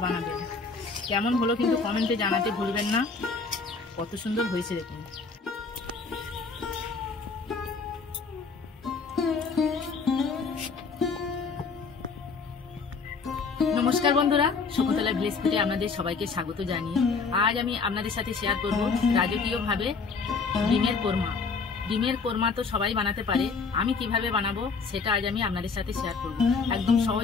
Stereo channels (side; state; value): right; quieter; 4.7 dB